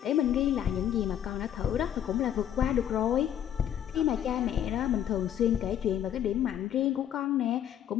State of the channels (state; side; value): quieter; right; 10.2 dB